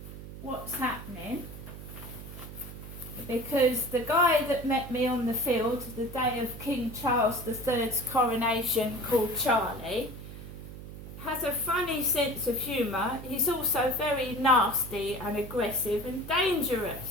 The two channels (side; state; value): right; noise; hum, 12 dB below the sound